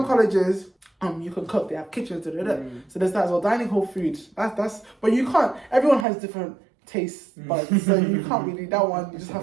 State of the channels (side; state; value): left; drops out; at 6.1 s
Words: colleges, you can cook. They have kitchens. So there's that as well. Dining hall food. That's. But you can't. Everyone has different taste buds, so you can't really, that one you just